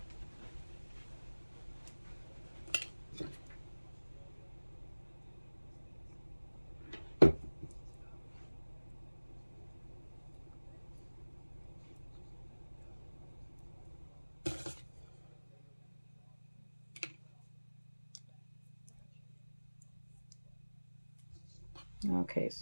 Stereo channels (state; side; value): inverted; both; correlation -1.00